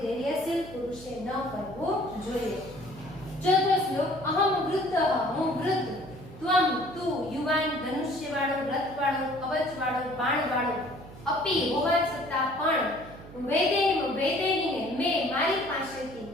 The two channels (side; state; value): right; noise; hum, 17 dB below the sound